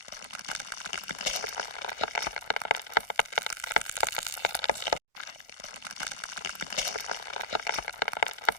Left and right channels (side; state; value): right; late; 1.4 ms